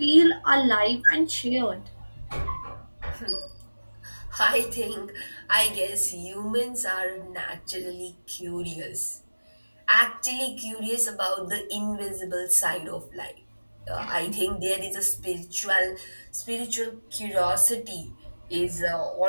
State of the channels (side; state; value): both; inverted; correlation -1.00